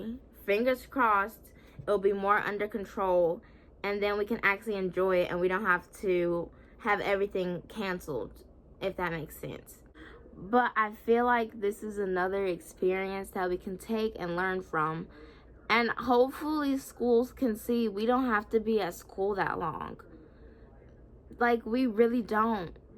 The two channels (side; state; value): both; identical; correlation 1.00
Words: fingers crossed, it'll be more under control, and then we can actually enjoy it and we don't have to have everything canceled, if that makes sense. But I feel like this is another experience that we can take and learn from. And hopefully schools can see we don't have to be at school that long. Like, we really don't.